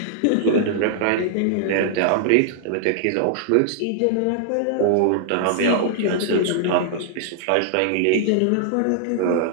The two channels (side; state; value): both; different; correlation -0.01